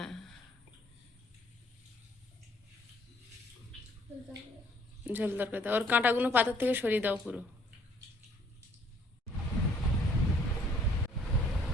ঝোল তরকারি দাও, ওর কাঁটাগুলো পাতার থেকে সরিয়ে দাও পুরো।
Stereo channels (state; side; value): normal; both; correlation 0.62